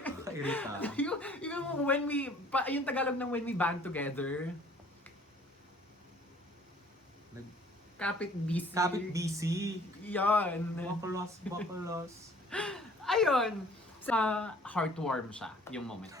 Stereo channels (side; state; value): both; normal; correlation 0.54